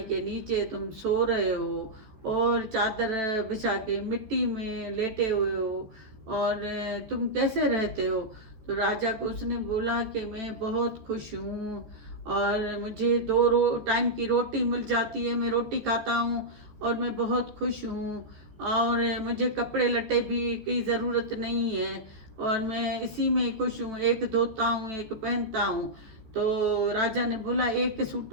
के नीचे तुम सो रहे हो, और चादर बिछा के मिट्टी में लेटे हुए हो, और तुम कैसे रहते हो। तो राजा को उसने बोला कि मैं बहुत खुश हूँ, और मुझे टाइम की रोटी मिल जाती है, मैं रोटी खाता हूँ, और मैं बहुत खुश हूँ, और मुझे कपड़े लट्टे भी की ज़रूरत नहीं है, और मैं इसी में खुश हूँ, एक धोता हूँ एक पहनता हूँ। तो राजा ने बोला एक सूट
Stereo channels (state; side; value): late; left; 14 ms